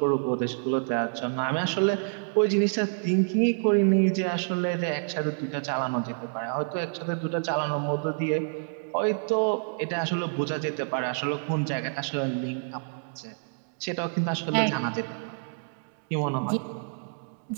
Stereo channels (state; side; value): silent; left; digital silence